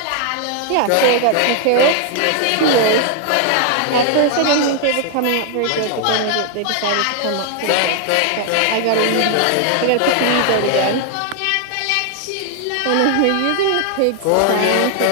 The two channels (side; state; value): both; different; correlation 0.00